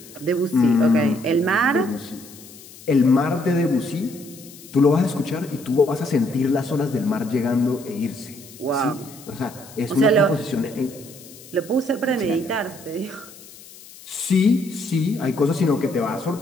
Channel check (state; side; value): noise; left; hiss, 19 dB below the sound